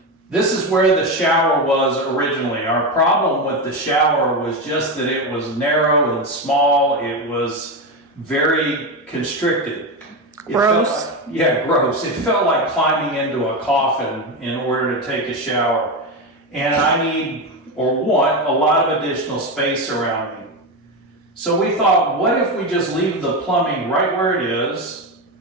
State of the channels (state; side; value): normal; both; correlation 0.15